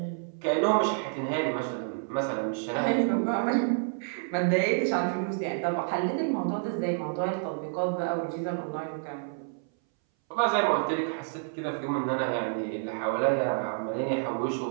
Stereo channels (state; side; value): silent; left; 59 dB below the other